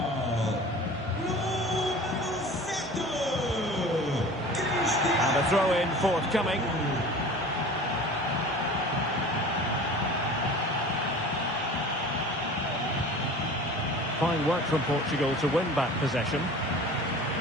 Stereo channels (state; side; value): normal; both; correlation 0.40